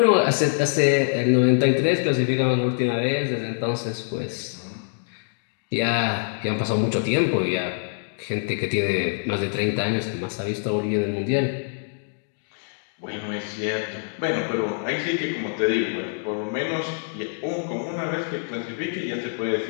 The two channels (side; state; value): right; silent; digital silence